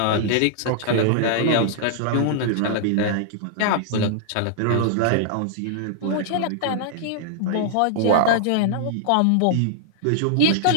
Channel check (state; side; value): different; both; correlation -0.01